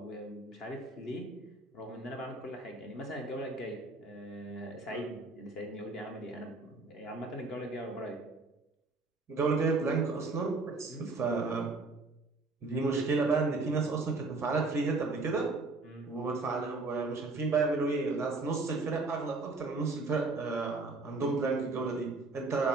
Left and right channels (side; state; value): left; quieter; 3.5 dB